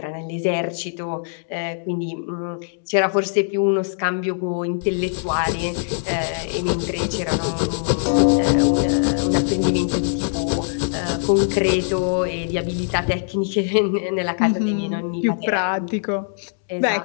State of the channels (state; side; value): silent; right; digital silence